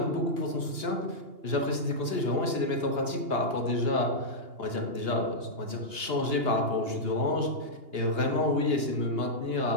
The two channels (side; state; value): left; late; 2.8 ms